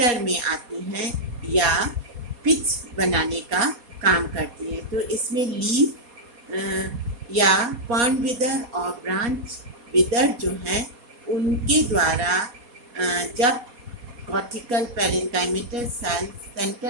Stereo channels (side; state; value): left; late; 4.2 ms